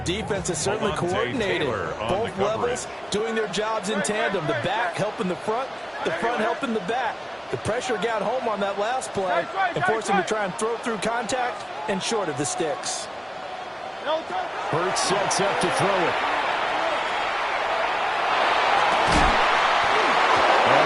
is certainly coordinated. Both levels doing their jobs in tandem. The back helping the front helping the back. The pressure got home on that last play and forced him to try and throw through contact and short of the sticks. Hurts sets up to throw it.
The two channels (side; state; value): both; identical; correlation 1.00